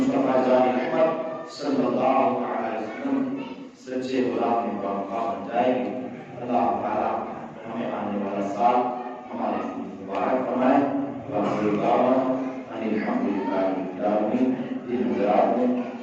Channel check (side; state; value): both; identical; correlation 1.00